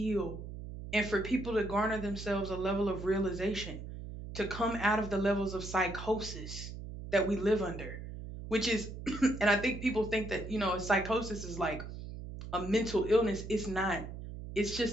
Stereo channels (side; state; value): right; noise; hum, 10 dB below the sound